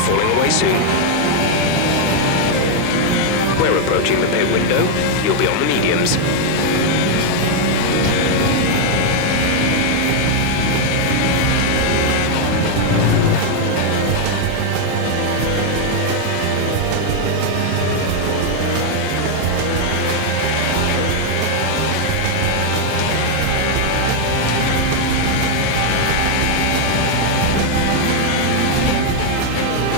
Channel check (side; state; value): both; different; correlation 0.00